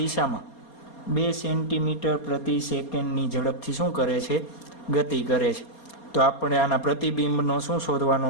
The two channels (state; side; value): late; right; 4.3 ms